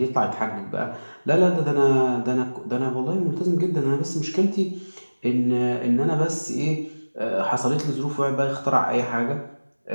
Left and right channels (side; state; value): both; inverted; correlation -1.00